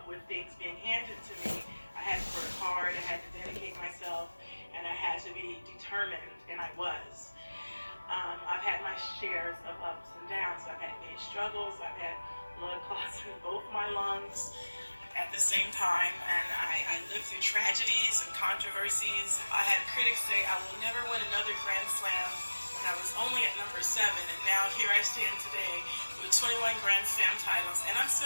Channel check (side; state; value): both; inverted; correlation -1.00